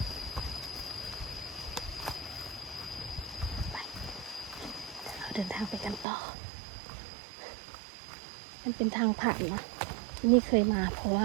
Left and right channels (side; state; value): left; drops out; at 6.1 s